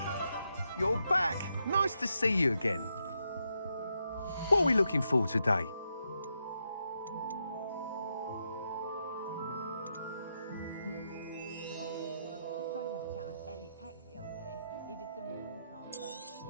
You're back. Nice to see you again. What are we looking for today?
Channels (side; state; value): both; inverted; correlation -0.82